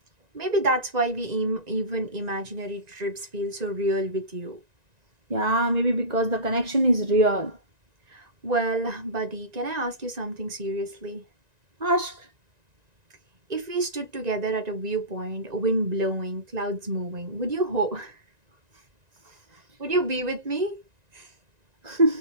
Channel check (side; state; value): left; late; 1.9 ms